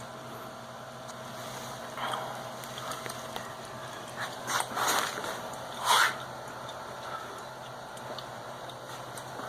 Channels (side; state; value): both; identical; correlation 1.00